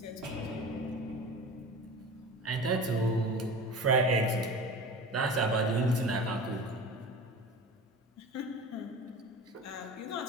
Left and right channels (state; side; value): normal; both; correlation 0.34